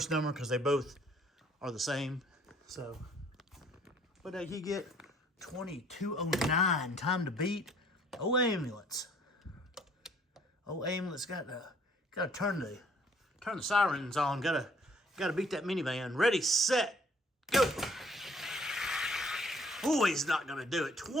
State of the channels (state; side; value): normal; both; correlation 0.60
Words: number because they both are the same. So, what did he get? 2209, time to beat. Oh, ambulance. Oh, ambulance got to turn the sirens on. Got to beat that minivan. Ready, set, go. Oh, he's not going to do it.